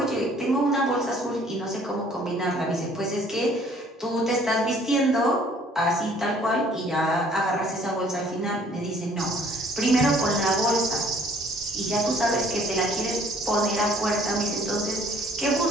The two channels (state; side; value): normal; both; correlation 0.58